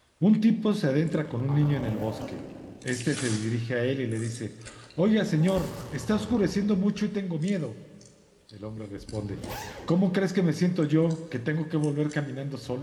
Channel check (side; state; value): both; identical; correlation 1.00